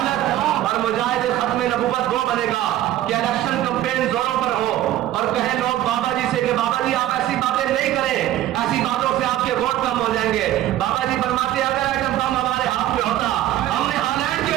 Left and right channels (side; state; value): left; quieter; 13.4 dB